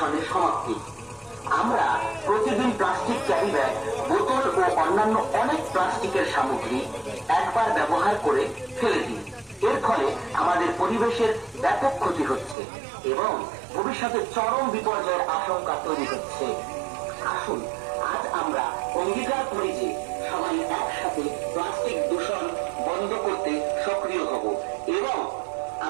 সমাপ্তি। আমরা প্রতিদিন প্লাস্টিক ক্যারি ব্যাগ, বোতল ও অন্যান্য অনেক প্লাস্টিকের সামগ্রী একবার ব্যবহার করে ফেলে দিই। এর ফলে আমাদের পরিবেশের ব্যাপক ক্ষতি হচ্ছে এবং ভবিষ্যতে চরম বিপর্যয়ের আশঙ্কা তৈরি হচ্ছে। আসুন আজ আমরা অঙ্গীকার করি যে সবাই একসাথে প্লাস্টিক দূষণ বন্ধ করতে সক্রিয় হব এবং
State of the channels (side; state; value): left; drops out; at 12.6 s